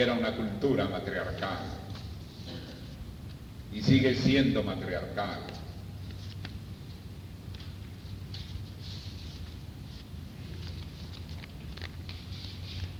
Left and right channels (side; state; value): both; identical; correlation 1.00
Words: una cultura matriarcal, y sigue siendo matriarcal.